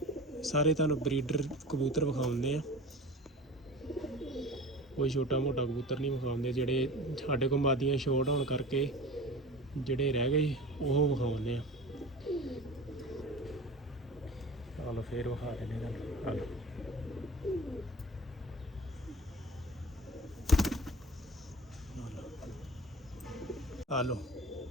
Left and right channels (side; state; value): both; normal; correlation 0.36